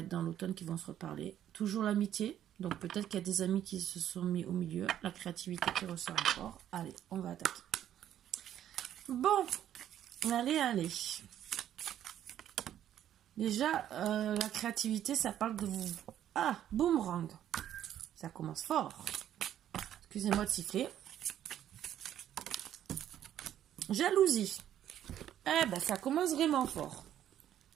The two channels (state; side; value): quieter; left; 11.0 dB